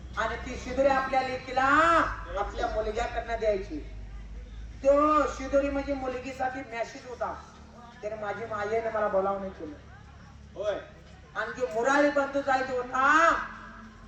आणि ती शिदोरी आपल्या लेकीला आपल्या मुलग्याकडनं द्यायची. तो शिदोरी म्हणजे मुलगीसाठी मॅसेज होता. त्याने माझी मायेने मला बोलावणे केलं. होय. आणि जो मुरारी बंधू जायचा होता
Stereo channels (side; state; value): both; identical; correlation 1.00